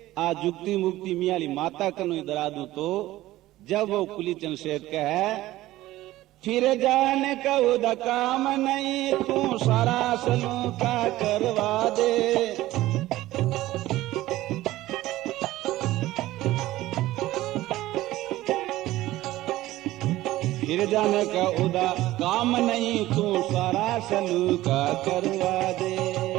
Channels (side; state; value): left; quieter; 16.2 dB